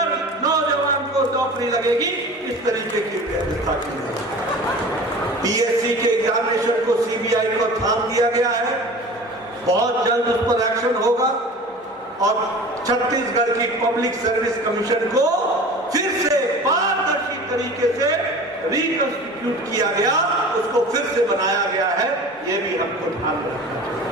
नौजवान को नौकरी लगेगी। इस तरीके की व्यवस्था की है। पीएससी के एग्जामिनेशन को सीबीआई को थाम दिया गया है। बहुत जल्द उस पर एक्शन होगा और छत्तीसगढ़ की पब्लिक सर्विस कमीशन को फिर से पारदर्शी तरीके से रिकंस्टिट्यूट किया गया, उसको फिर से बनाया गया है। ये भी हमको ध्यान रखना चाहिए।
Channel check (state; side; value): normal; both; correlation 0.39